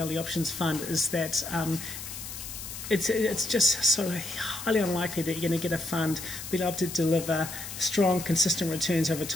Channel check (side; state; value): left; noise; hiss, 9 dB below the sound